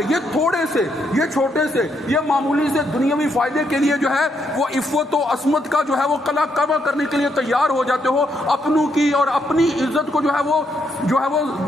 یہ تھوڑے سے، یہ چھوٹے سے، یہ معمولی سے دنیاوی فائدے کے لیے جو ہے وہ عفت و عصمت کا جو ہے وہ قلع کعبہ کرنے کے لیے تیار ہو جاتے ہو. اپنوں کی اور اپنی عزت کو جو ہے وہ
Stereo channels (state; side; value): normal; both; correlation 0.77